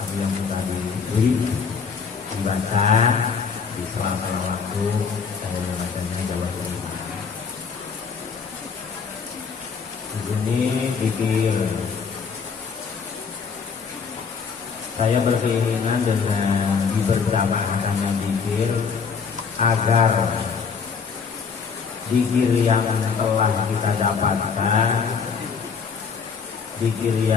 yang sudah diberi dibaca di sela-sela waktu saya membacanya bahwa di sini pikir saya berkeinginan dengan diberjamaahkannya zikir agar zikir yang telah kita dapatkan, zikir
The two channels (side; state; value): right; quieter; 5.8 dB